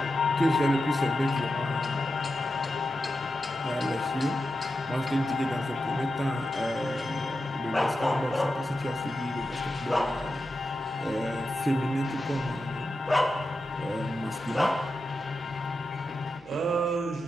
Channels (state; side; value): noise; left; hum, 27 dB below the sound